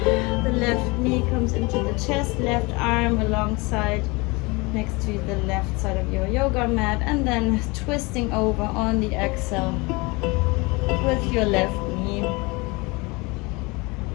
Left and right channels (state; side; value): quieter; right; 26.1 dB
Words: The left knee comes into the chest, left arm alongside next to the left side of your yoga mat, and then twisting over on the exhale with your left knee.